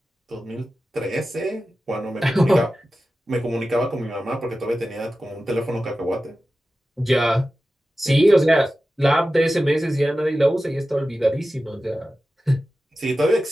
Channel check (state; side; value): normal; both; correlation 0.94